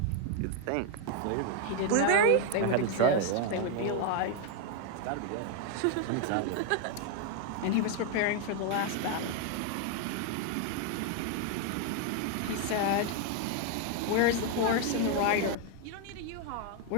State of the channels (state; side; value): different; both; correlation 0.01